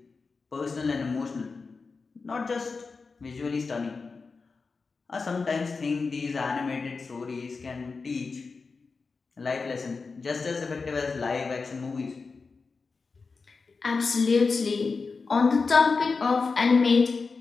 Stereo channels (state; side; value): quieter; right; 4.5 dB